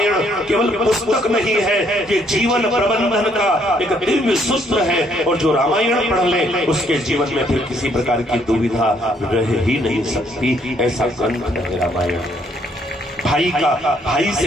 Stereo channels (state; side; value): normal; both; correlation 0.68